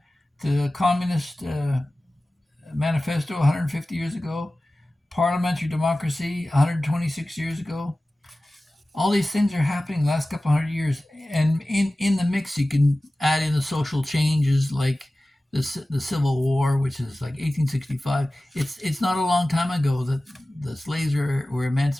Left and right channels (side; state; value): both; normal; correlation 0.96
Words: to the Communist Manifesto 150 years ago, parliamentary democracy 126 years ago. All these things are happening the last couple 100 years. And in the mix, you can add in the social changes like the Civil War, which is like 1865. It's not a long time ago that the slaves were